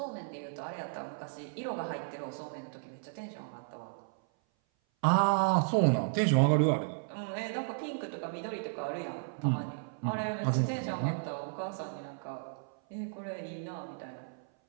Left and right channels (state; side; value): silent; left; 55 dB below the other